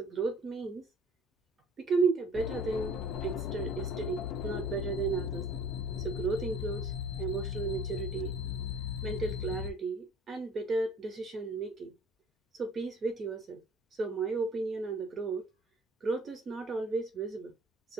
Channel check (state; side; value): normal; both; correlation 0.50